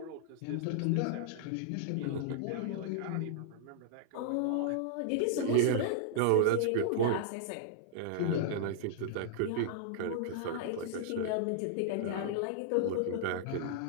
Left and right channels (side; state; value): both; different; correlation -0.01